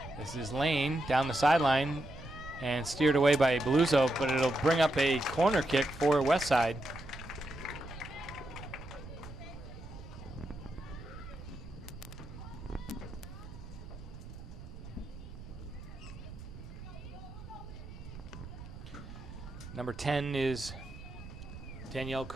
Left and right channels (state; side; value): noise; right; rumble, 13 dB below the sound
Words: This is Lane down the sideline and steered away by Bluzo, but it'll bring up a corner kick for West Side. Number 10 is Danielle